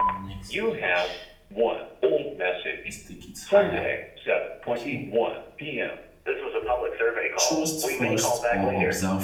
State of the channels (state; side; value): identical; both; correlation 1.00